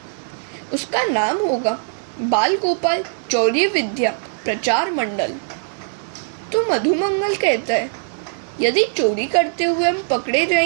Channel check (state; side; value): silent; left; digital silence